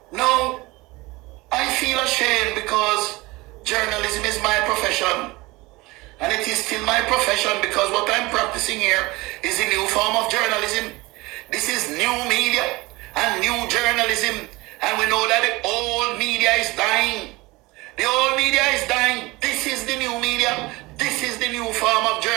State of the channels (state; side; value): quieter; left; 22.1 dB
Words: No, I feel ashamed because journalism is my profession. And it is still my profession because what I'm practicing here is a new form of journalism. This is new media and new journalism. And we know that the old media is dying. The old media is dying. This is the new media. This is the new form of